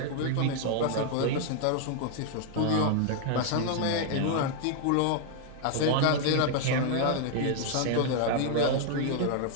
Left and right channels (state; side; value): different; both; correlation 0.00